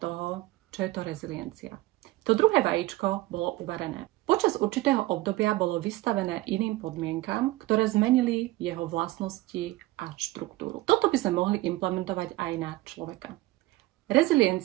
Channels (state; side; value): quieter; left; 18.4 dB